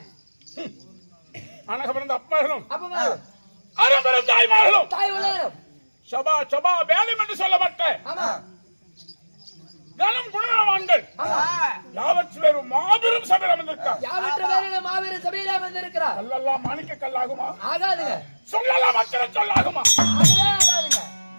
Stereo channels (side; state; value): both; inverted; correlation -1.00